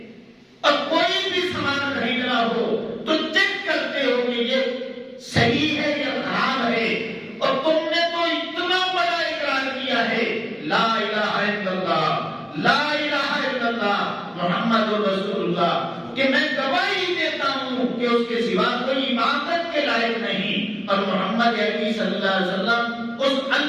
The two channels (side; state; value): both; identical; correlation 1.00